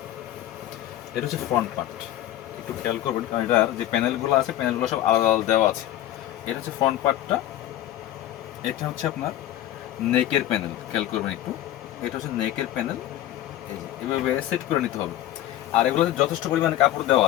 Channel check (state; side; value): quieter; right; 13.2 dB